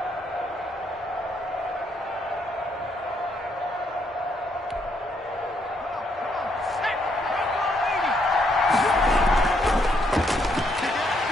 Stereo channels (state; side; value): normal; both; correlation 0.73